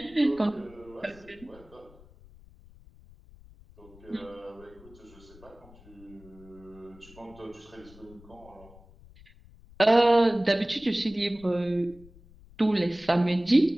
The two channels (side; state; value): left; noise; rumble, 23 dB below the sound